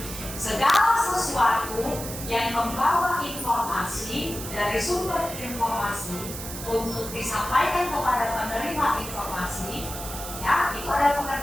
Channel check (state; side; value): noise; right; hiss, 9 dB below the sound